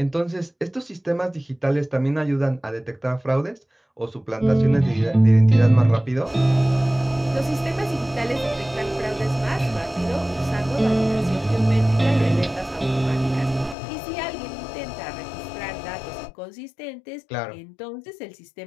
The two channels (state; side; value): drops out; right; at 13.8 s